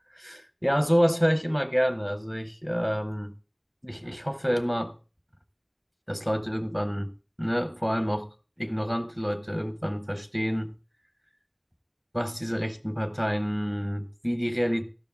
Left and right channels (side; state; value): both; identical; correlation 1.00